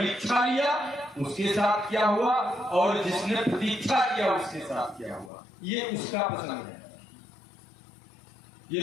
लिया उसके साथ क्या हुआ, और जिसने प्रतीक्षा किया उसके साथ क्या हुआ, ये उसका पसंद है।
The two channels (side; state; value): right; drops out; at 5.3 s